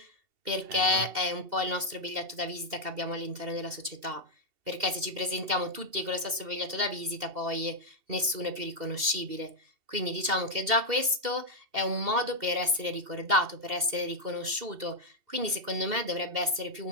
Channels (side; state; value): left; late; 2.7 ms